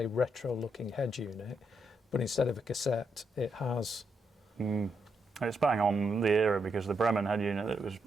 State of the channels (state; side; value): normal; both; correlation 0.80